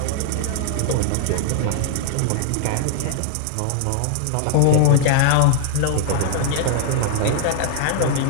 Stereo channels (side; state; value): both; different; correlation 0.00